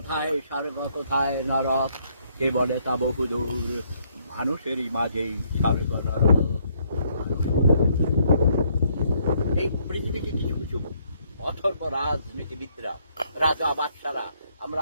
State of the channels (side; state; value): both; inverted; correlation -0.69